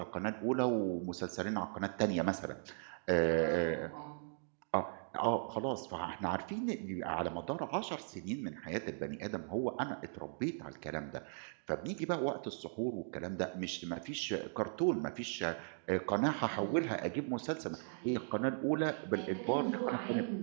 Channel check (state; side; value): silent; left; digital silence